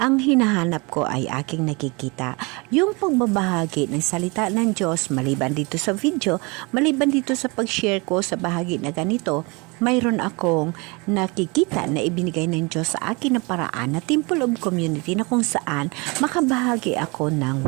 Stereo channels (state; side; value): quieter; left; 27.9 dB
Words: ang hinahanap ko ay aking nakikita. Yung pagbabahagi ng salita ng Diyos, maliban dito sa video, maliban dito sa pag-share ko sa bahagi na ganito, mayroon akong nakikita na ibinigay ng Diyos sa akin na paraan na Temple of Community na kung saan makabahagi ako ng